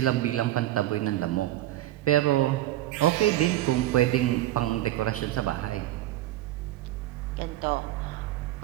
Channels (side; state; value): left; quieter; 14.8 dB